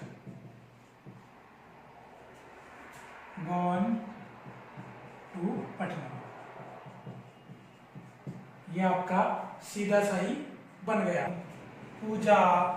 gone to Patna, ये आपका सीधा सही बन गया। पूजा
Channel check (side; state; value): both; identical; correlation 1.00